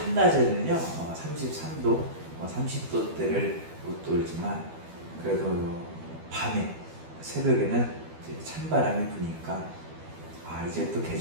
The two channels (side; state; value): left; late; 12 ms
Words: 33도, 30도대를 못 돌지만 그래도 밤에 새벽에는 이제 찬바람이 부니까 이제 또